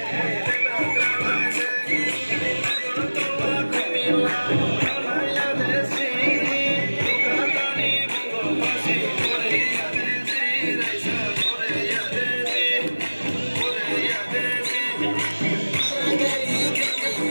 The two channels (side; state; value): both; inverted; correlation -1.00